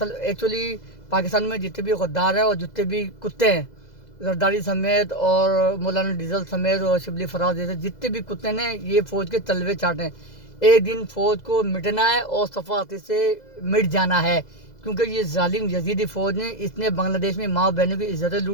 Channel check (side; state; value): right; late; 2.0 ms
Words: ایکچولی پاکستان میں جتنے بھی غدار ہیں اور جتنے بھی کتے ہیں، زرداری سمیت اور مولانا ڈیزل سمیت اور شبلی فراز جیسے جتنے بھی کتے ہیں، یہ فوج کے تلوے چاٹیں۔ ایک دن فوج کو مٹنا ہے اور صفاقتی سے مٹ جانا ہے، کیونکہ یہ ظالم یزیدی فوج نے اس نے بنگلہ دیش میں ماں بہنوں کی عزتیں